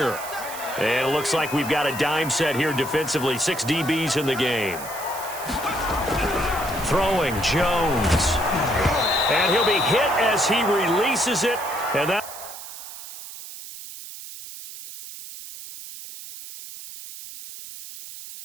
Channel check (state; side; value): noise; right; hiss, 12 dB below the sound